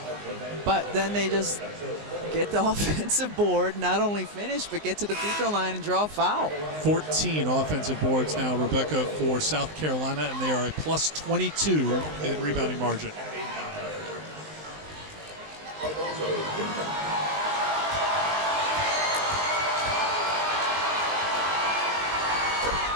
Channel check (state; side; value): late; left; 19 ms